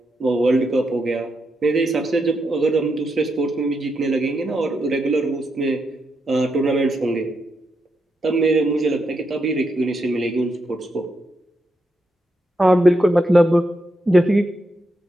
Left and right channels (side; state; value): both; normal; correlation 0.83